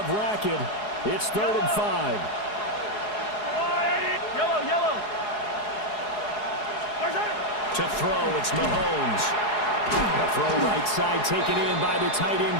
racket. It's 3rd and 5. Yellow. To throw, it's Mahomes. A throw right side taken in by the tight end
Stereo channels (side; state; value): right; late; 4.8 ms